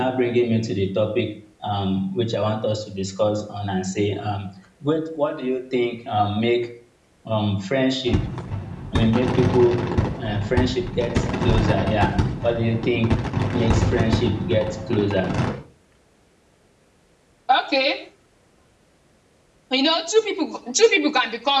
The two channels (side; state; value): both; identical; correlation 1.00